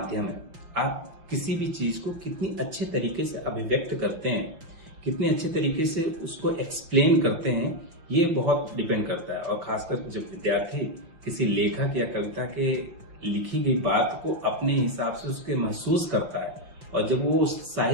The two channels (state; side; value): late; left; 6.0 ms